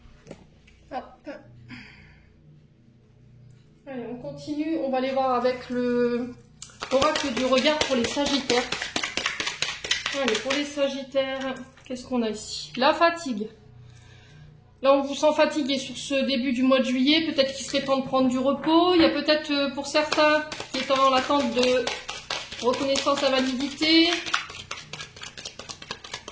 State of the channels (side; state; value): both; identical; correlation 1.00